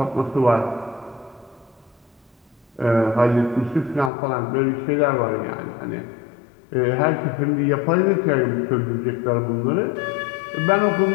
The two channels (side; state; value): right; drops out; at 4.1 s